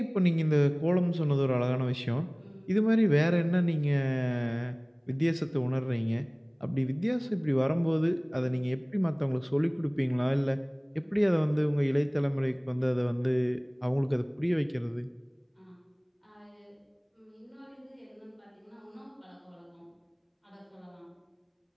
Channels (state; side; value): identical; both; correlation 1.00